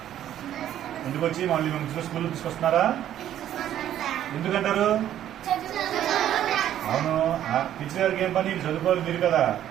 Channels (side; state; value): left; quieter; 11.4 dB